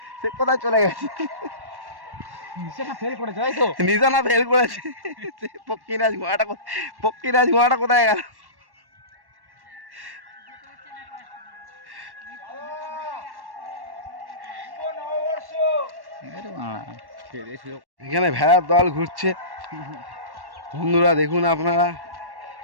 সে কোথায় চলে গেছে? নিশানা ফেল করেছে। পক্ষীরাজ ঘোড়াটা কোথায় গেল? এখানে ভেড়ার দল ঘুরছে বন্ধুরা দেখুন আপনারা।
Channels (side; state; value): left; late; 1.1 ms